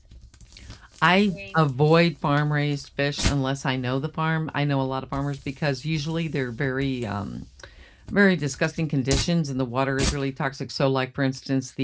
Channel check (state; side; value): identical; both; correlation 1.00